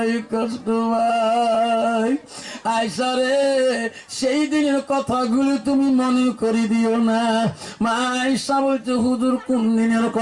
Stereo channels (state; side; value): identical; both; correlation 1.00